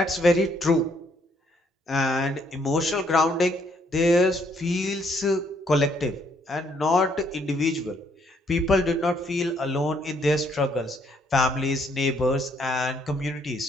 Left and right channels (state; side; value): normal; both; correlation 0.69